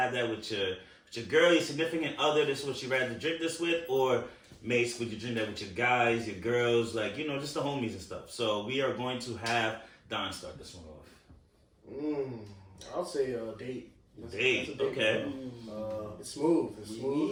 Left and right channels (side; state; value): both; identical; correlation 1.00